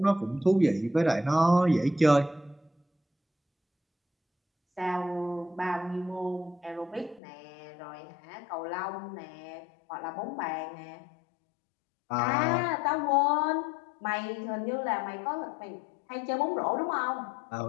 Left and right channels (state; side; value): drops out; right; at 7.2 s